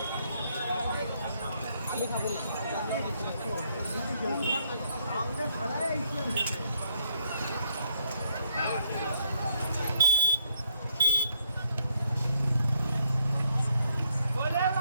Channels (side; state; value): both; inverted; correlation -0.77